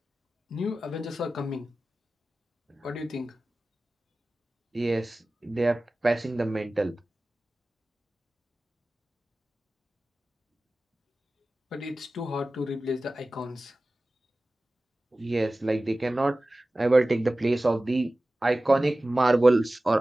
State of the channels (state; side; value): normal; both; correlation 0.96